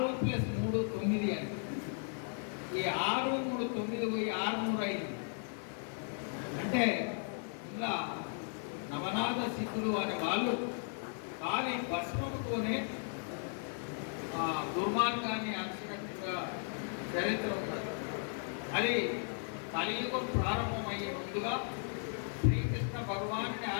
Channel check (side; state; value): right; silent; 54 dB below the other